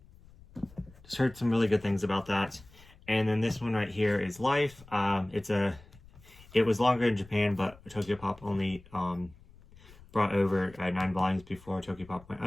just heard some really good things about that. And then this one right here is Life. It was longer in Japan, but TokyoPop only brought over 9 volumes before TokyoPop went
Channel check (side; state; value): left; noise; rumble, 23 dB below the sound